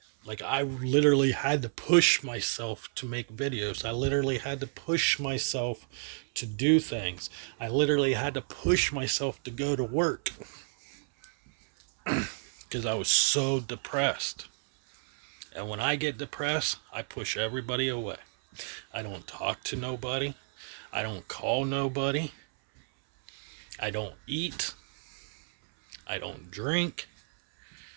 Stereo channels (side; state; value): left; silent; 57 dB below the other